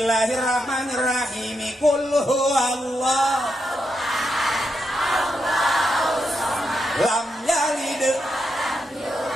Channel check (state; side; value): normal; both; correlation 0.83